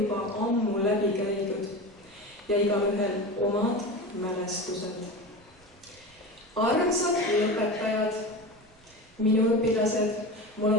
ammu läbi käidud ja igaühel omad mälestused. Armsad lõpetajad, minu õpilased, mul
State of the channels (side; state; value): right; noise; rumble, 29 dB below the sound